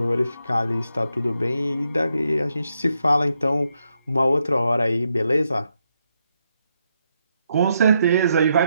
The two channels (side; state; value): both; inverted; correlation -0.81